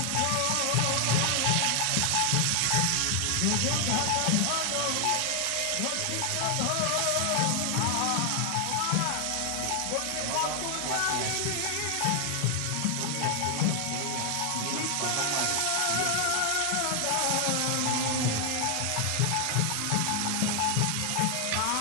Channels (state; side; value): different; both; correlation 0.00